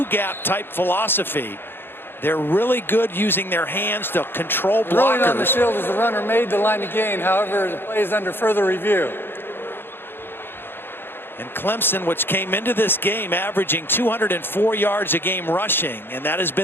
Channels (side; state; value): right; late; 0.10 ms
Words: type philosophy. They're really good using their hands to control blockers. Rolling on the field as the runner made the line to gain. However, the play is under further review. And Clemson, which came into this game averaging 204 yards a game rushing, and that has